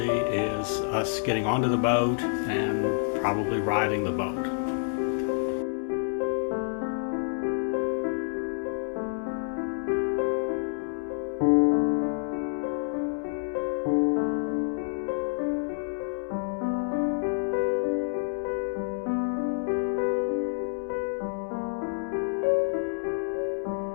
is us getting onto the boat and probably riding the boat.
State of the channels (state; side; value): silent; right; 59 dB below the other